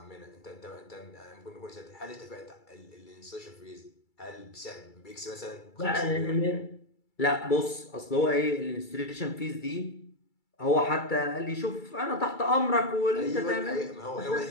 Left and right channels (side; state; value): right; late; 2.3 ms